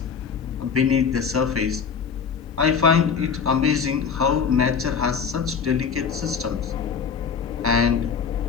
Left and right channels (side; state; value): right; quieter; 6.3 dB